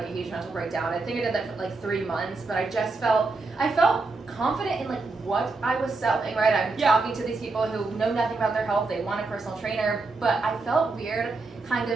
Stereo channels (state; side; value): quieter; left; 3.7 dB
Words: a huge mental breakdown. I think I did that for like 3 months, but I felt confident in like what I was selling, right? I'm talking to these people who know nothing about their health, they want a personal trainer, but I felt weird kind